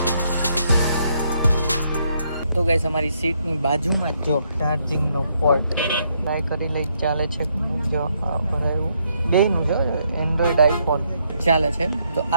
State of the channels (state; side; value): inverted; both; correlation -0.74